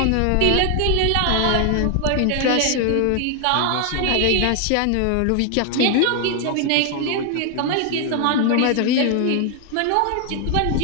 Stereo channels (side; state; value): both; different; correlation 0.00